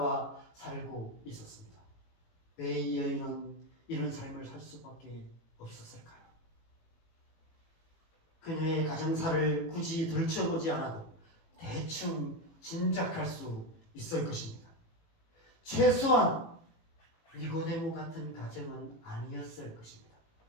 살고 있었습니다. 왜 이 여인은 이런 삶을 살 수밖에 없었을까요? 그녀의 가정사를 굳이 들춰보지 않아도 대충 짐작할 수 있을 것입니다. 최소한 니고데모 같은 가정은 아니었을 것입니다.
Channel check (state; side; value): late; right; 18 ms